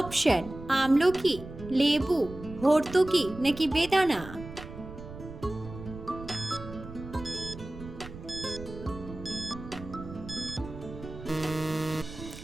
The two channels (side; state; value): right; noise; rumble, 13 dB below the sound